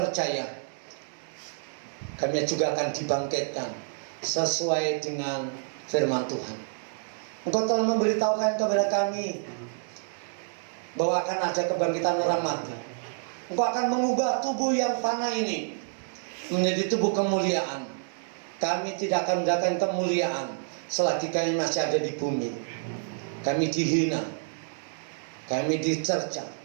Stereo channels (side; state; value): left; silent; digital silence